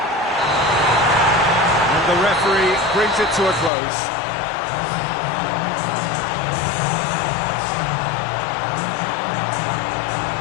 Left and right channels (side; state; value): right; drops out; at 3.7 s